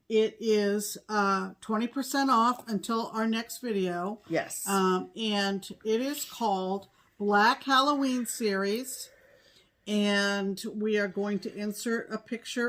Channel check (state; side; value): identical; both; correlation 1.00